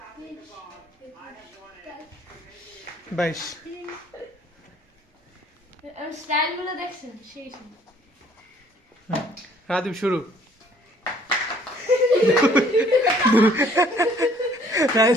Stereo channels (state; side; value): normal; both; correlation 0.59